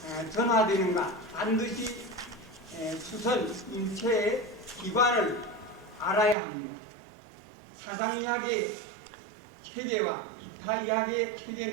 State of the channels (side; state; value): left; drops out; at 6.4 s